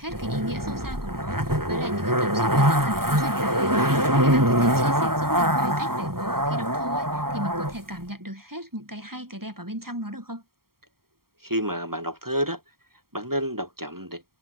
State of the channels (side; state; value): left; late; 0.93 ms